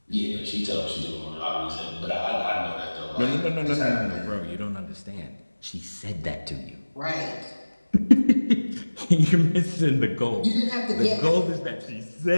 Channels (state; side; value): inverted; both; correlation -1.00